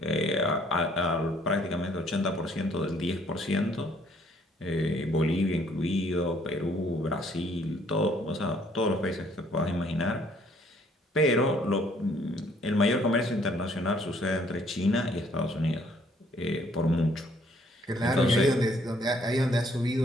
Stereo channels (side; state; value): both; normal; correlation 0.63